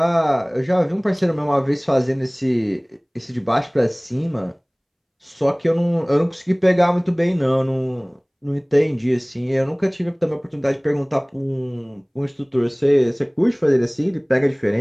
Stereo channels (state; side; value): identical; both; correlation 1.00